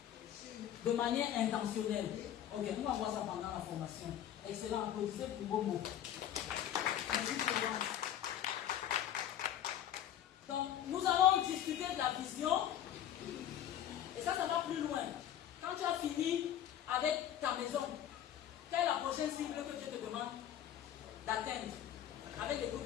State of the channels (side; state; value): right; quieter; 10.8 dB